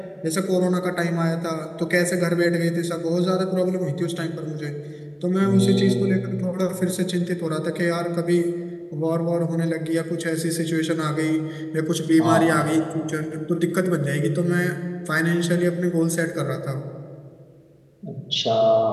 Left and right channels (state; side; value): identical; both; correlation 1.00